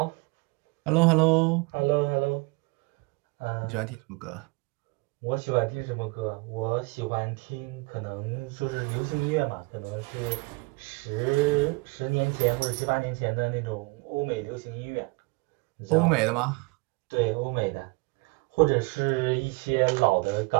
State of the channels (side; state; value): left; quieter; 27.1 dB